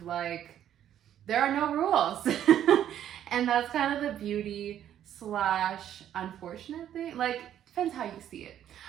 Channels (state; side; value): quieter; left; 10.7 dB